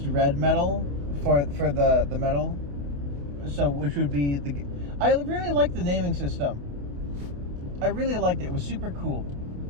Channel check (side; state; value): left; late; 28 ms